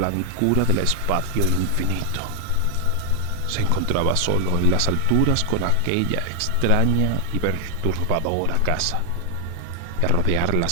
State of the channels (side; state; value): both; different; correlation 0.00